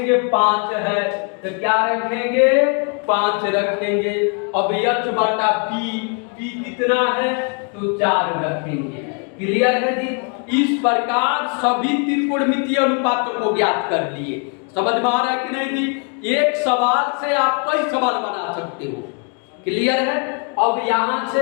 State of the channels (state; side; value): quieter; right; 38.7 dB